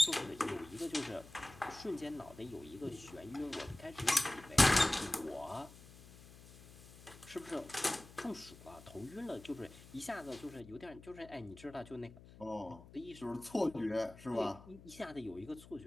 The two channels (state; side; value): noise; left; hum, 19 dB below the sound